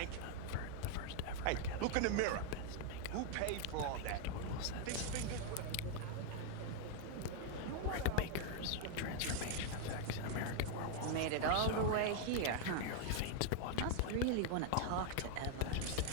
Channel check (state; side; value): different; both; correlation 0.00